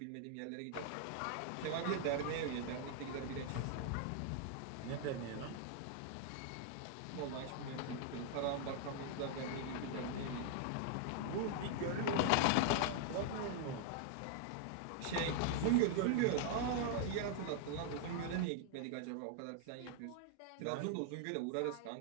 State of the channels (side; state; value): both; different; correlation 0.00